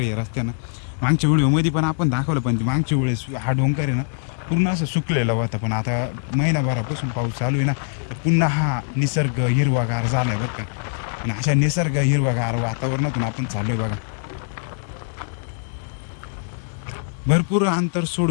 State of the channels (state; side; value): silent; right; digital silence